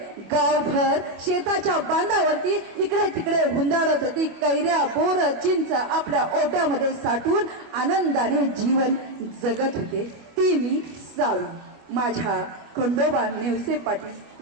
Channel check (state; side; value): late; left; 25 ms